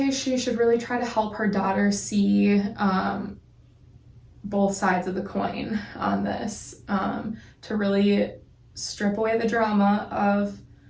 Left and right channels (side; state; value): both; identical; correlation 1.00